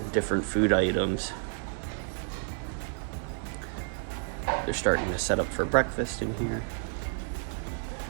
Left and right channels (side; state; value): left; silent; 58 dB below the other